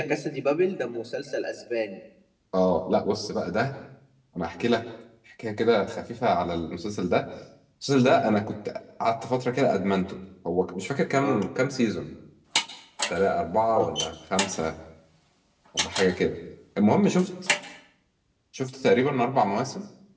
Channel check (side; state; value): both; identical; correlation 1.00